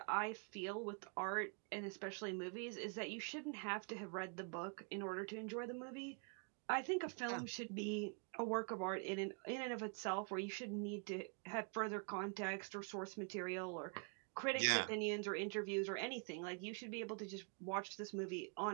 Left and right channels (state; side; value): quieter; left; 39.2 dB